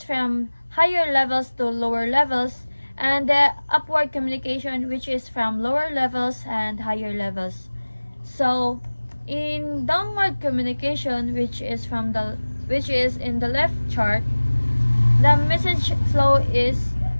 from higher levels to lower levels, and the upward communication, which is from lower levels and higher levels. So, in downward communication, which is in the left chart, the message flow is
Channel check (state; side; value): inverted; both; correlation -1.00